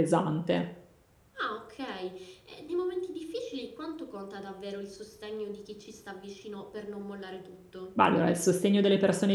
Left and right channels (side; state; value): both; identical; correlation 1.00